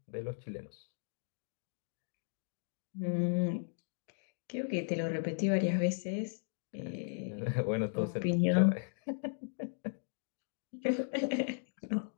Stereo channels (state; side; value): silent; right; digital silence